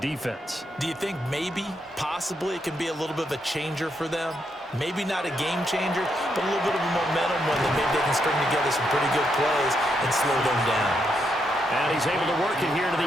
Do you think maybe, possibly, it can be a little bit of a changer for them? Maybe not a game changer, but a little bit of a momentum one that maybe they can string together some pretty good plays and slow them down. And he's able to work it here to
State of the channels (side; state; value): both; normal; correlation 0.79